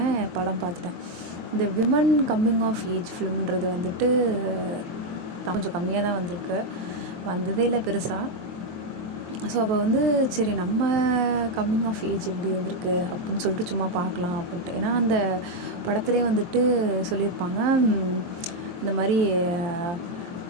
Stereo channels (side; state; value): left; late; 23 ms